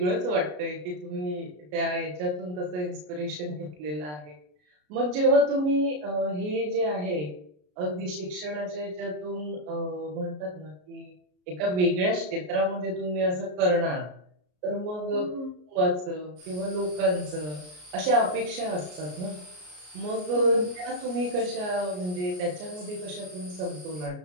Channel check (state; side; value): late; left; 33 ms